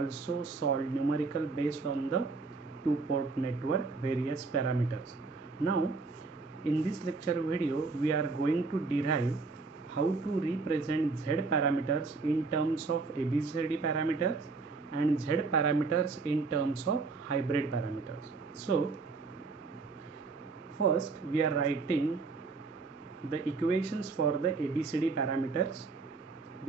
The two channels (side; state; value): left; quieter; 4.1 dB